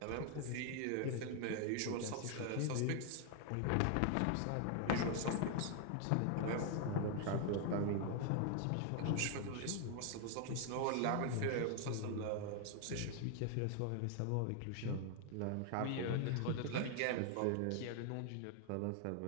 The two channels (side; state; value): both; different; correlation 0.00